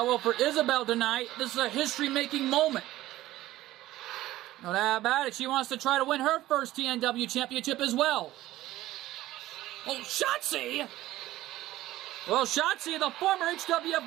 well, for Isabel tonight, this is a history-making moment. No doubt about it. She wants to try to win her first TNW championship as well. Oh, Shotzi! Well, Shotzi, the former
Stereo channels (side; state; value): left; quieter; 15.7 dB